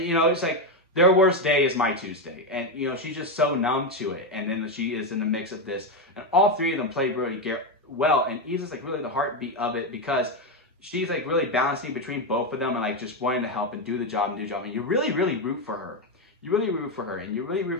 you know, it's like their worst day is my Tuesday. And you know, she's just so numb to it. And then she is in the mix of this. And all three of them play really well. And Isa's like really the heartbeat of it because she's like really balancing between both of them and like just wanting to help and do the job. And you really, really root for her. You really root for her and you really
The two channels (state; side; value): normal; both; correlation 0.08